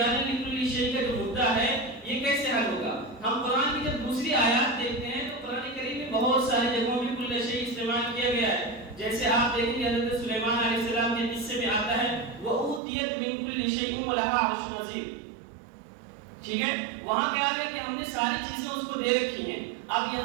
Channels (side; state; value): left; drops out; at 12.8 s